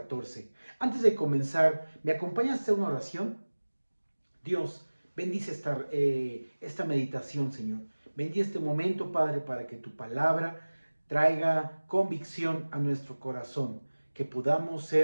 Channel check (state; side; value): inverted; both; correlation -1.00